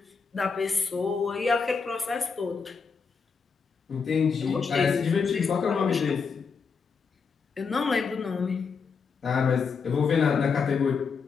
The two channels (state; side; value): quieter; right; 5.4 dB